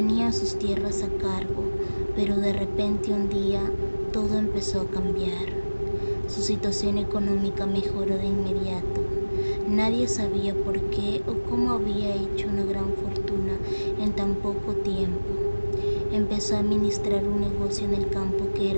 sus tierras a cargo, pero de repente un día todo empezó a cambiar. Su situación económica mejoró de inmediato. Nadie sabía por qué o cómo había hecho una gran fortuna en tan poco tiempo. Empezó a administrar un negocio en el campo que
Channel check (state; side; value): inverted; both; correlation -1.00